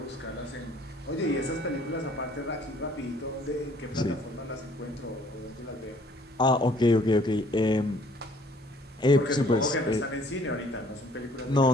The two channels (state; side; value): normal; both; correlation 0.58